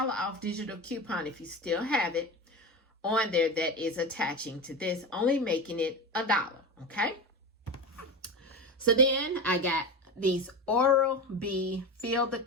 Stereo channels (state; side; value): normal; both; correlation 0.23